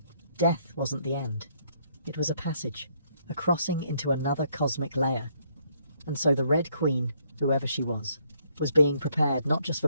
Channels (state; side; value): inverted; both; correlation -0.69